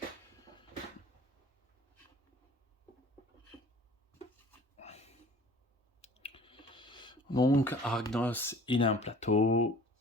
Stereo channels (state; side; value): normal; both; correlation 0.48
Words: Donc Arachnos, il a un plateau